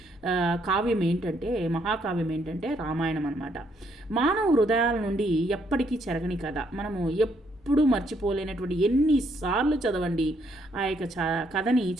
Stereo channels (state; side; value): normal; both; correlation 0.71